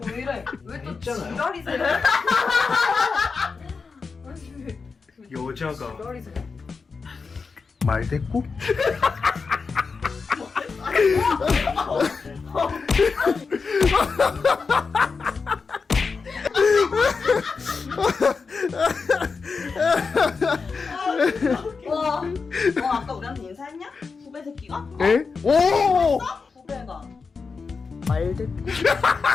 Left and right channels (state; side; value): quieter; right; 4.9 dB